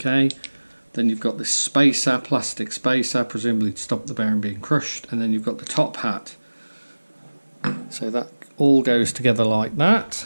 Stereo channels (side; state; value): both; inverted; correlation -1.00